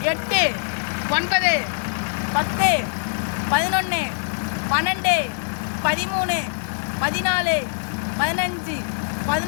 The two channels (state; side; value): silent; right; digital silence